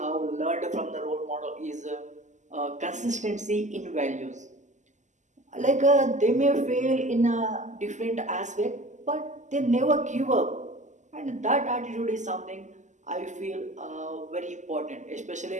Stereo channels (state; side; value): late; left; 0.35 ms